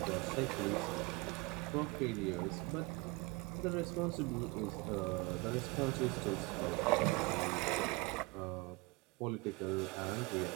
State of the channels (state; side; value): quieter; left; 25.1 dB